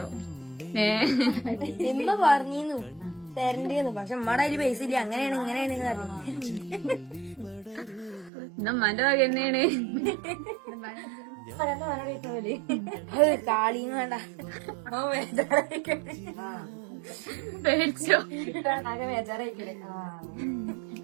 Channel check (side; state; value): left; drops out; at 8.3 s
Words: ഇമ്മ പറഞ്ഞിരുന്നു തരണ്ടേന്ന്, പക്ഷെ ഉമ്മയുടെ അതില് പൈസ ഇല്ല. അങ്ങനെയാണ് ഇങ്ങനെയാണ് പറഞ്ഞു. ഉമ്മാന്റെ വക തന്നെയാണ്. കാളിയും വേണ്ട. പേടിച്ചോ? ബേജാറായിക്കണേ.